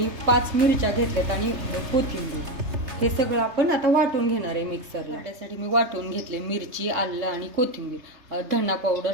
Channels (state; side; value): late; left; 3.3 ms